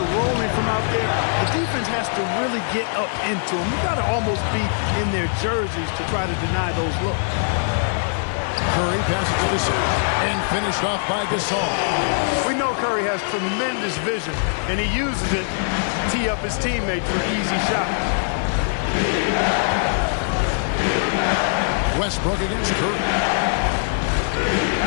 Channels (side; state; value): right; silent; 64 dB below the other